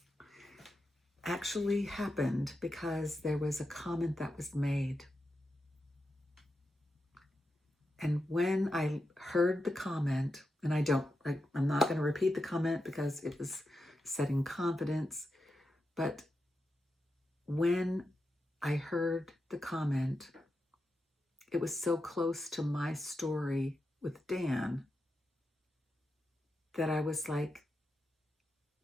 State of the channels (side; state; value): both; normal; correlation 0.88